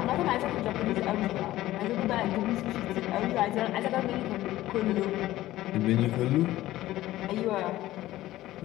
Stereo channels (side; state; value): right; quieter; 15.5 dB